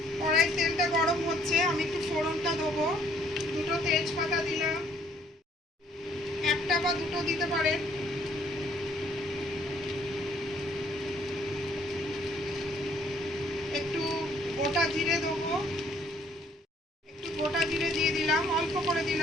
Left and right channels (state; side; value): normal; both; correlation 0.63